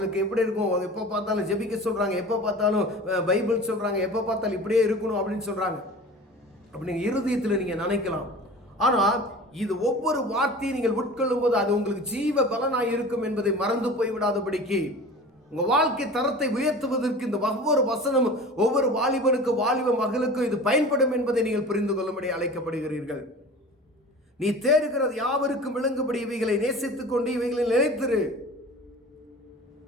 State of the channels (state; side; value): normal; both; correlation 0.38